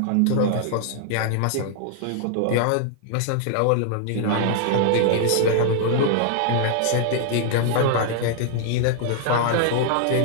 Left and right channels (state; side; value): different; both; correlation -0.01